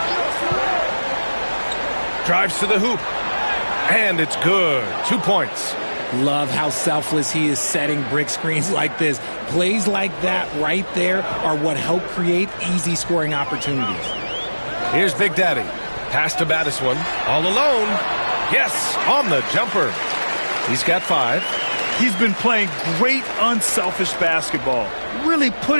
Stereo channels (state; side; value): inverted; both; correlation -1.00